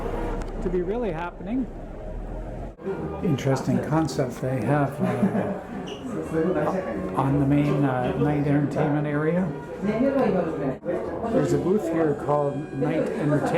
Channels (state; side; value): identical; both; correlation 1.00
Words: be really happening. Interesting concept they have on the main night entertainment area. There's a booth here called Night